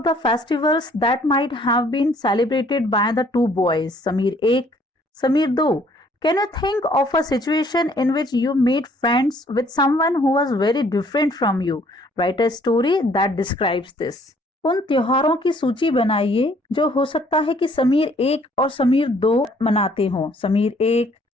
the festivals that might have been celebrated by the two boys, Samir Ek, Samir Do. Can you think of a situation in which you made friends with someone who was very different from you? Write a story that describes this. उन त्योहारों की सूची बनाइए जो हो सकता है कि समीर एक और समीर दो मनाते हों। समीर एक,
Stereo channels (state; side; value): normal; both; correlation 0.61